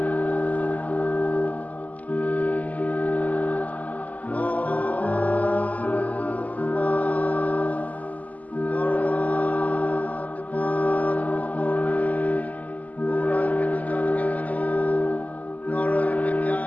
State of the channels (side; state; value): right; late; 0.076 ms